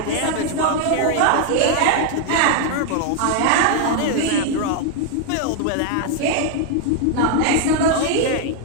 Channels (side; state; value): both; different; correlation 0.00